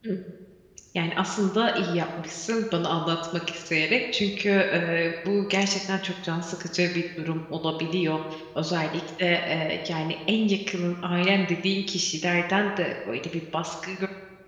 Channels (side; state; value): both; identical; correlation 1.00